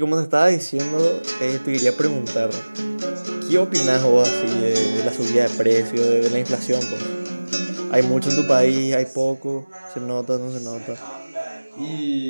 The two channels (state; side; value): inverted; both; correlation -1.00